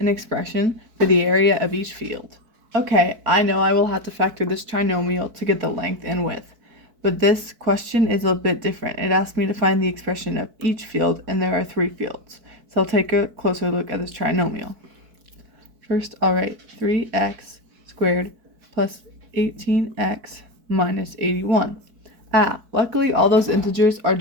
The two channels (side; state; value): left; late; 4.6 ms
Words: expression for the area of each field. Okay, I know I will have to factor this trinomial to get the length and width. But this question is a bit different. It asks me to find the expression of each field, and there are 3 fields. So I'll take a closer look at this trinomial. First, I'll write 3x squared plus 18x minus 81. Luckily all those integers are